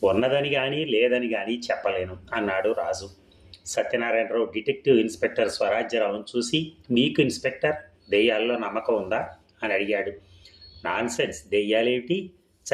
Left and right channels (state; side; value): identical; both; correlation 1.00